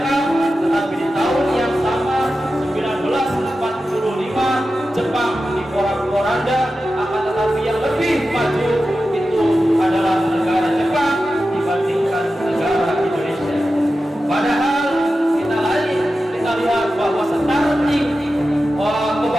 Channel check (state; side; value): normal; both; correlation 0.92